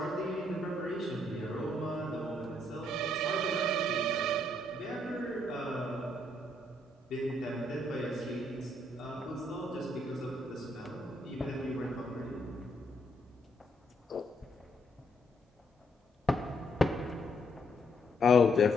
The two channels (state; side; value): normal; both; correlation 0.73